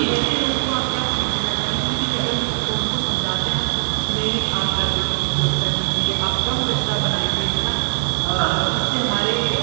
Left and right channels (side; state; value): left; silent; digital silence